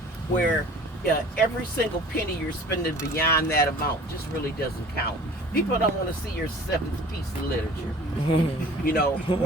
where every single penny you're spending beyond that amount just really doesn't count. People don't want to see your seventh piece of literature, you know,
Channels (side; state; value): both; normal; correlation 0.46